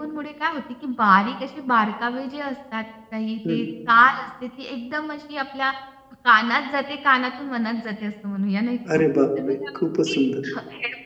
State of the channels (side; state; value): both; identical; correlation 1.00